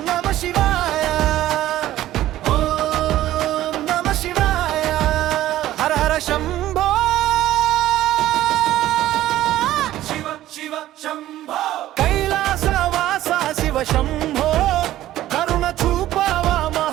కైలాసవాస శివ శంభో కరుణ చూపవా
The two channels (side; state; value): left; quieter; 14.1 dB